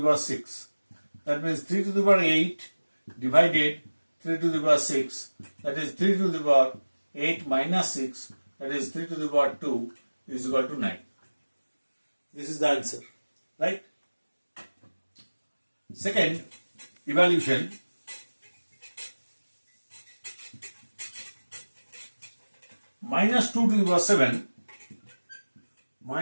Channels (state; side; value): inverted; both; correlation -1.00